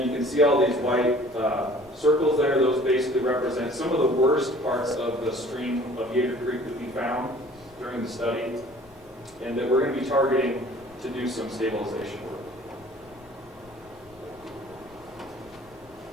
you can see all these white circles there. Those basically represent some of the worst parts of the stream of Yater Creek that we found during the study, and that we're going to be targeting to do some stabilization work.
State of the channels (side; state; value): left; noise; rumble, 26 dB below the sound